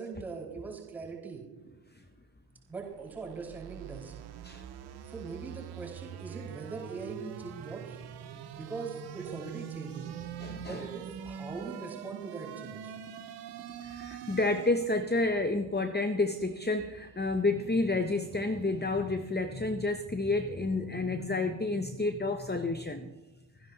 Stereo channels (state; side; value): normal; both; correlation 0.44